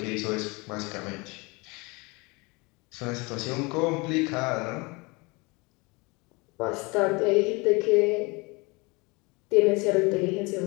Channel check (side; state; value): right; quieter; 26.8 dB